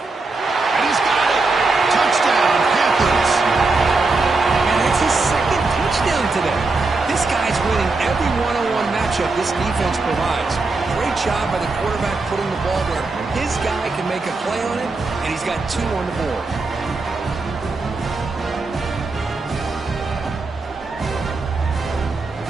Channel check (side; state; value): left; quieter; 3.6 dB